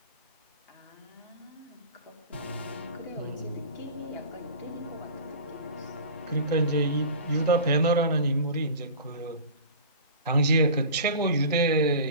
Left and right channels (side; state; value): both; inverted; correlation -0.37